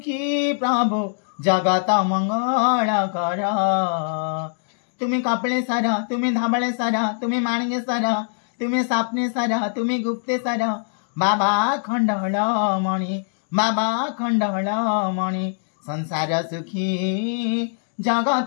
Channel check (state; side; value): silent; right; digital silence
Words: प्रभु जगत मंगल कर। तुम्हें कपिलेश्वर तुम्हें धवलेश्वर तुम्हें माणिकेश्वर तुम्हें स्वप्नेश्वर तुम्हें गुप्तेश्वर बाबा खंडहळमणि बाबा खंडहळमणि संसार सुखी